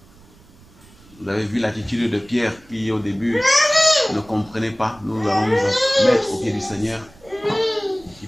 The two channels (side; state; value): right; noise; rumble, 26 dB below the sound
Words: Vous avez vu l'attitude de Pierre qui au début ne comprenait pas. Nous allons nous mettre au pied du Seigneur, qui